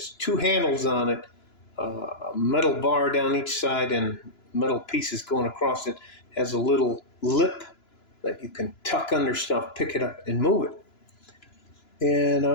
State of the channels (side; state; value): right; late; 2.9 ms